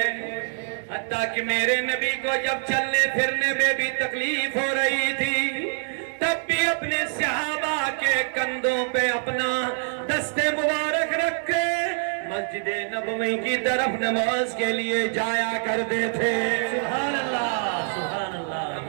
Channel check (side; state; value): left; silent; 62 dB below the other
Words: حتیٰ کہ میرے نبی کو جب چلنے پھرنے میں بھی تکلیف ہو رہی تھی تب بھی اپنے صحابہ کے کندھوں پہ اپنا دست مبارک رکھ کے مسجد نبوی کی طرف نماز کے لیے جایا کرتے تھے۔ سبحان اللہ سبحان اللہ۔